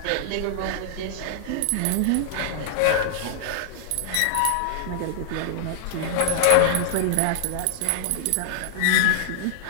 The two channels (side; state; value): both; different; correlation -0.01